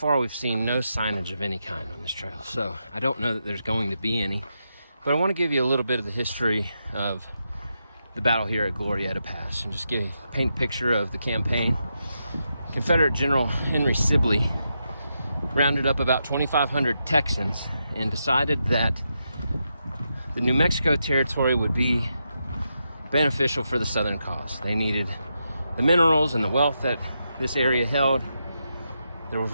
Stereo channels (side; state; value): both; inverted; correlation -0.85